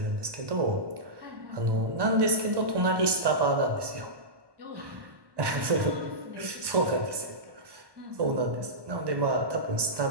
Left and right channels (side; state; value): left; late; 1.1 ms